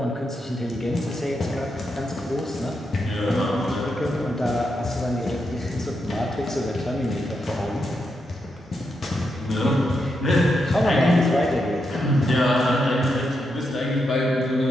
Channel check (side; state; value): both; normal; correlation 0.84